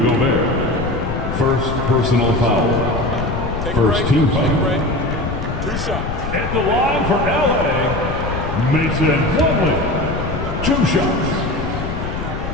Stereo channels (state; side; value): noise; left; rumble, 5 dB below the sound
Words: Gobert. First personal foul. First team foul. 2 shots. At the line for LA, Mason Plumlee. 2 shots.